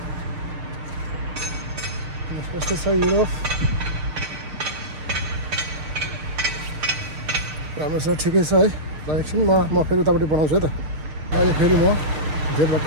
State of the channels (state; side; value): late; left; 6.6 ms